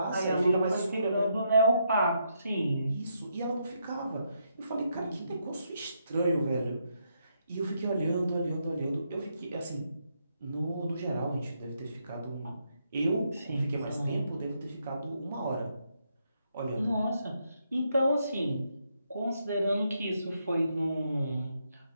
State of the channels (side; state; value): both; inverted; correlation -0.78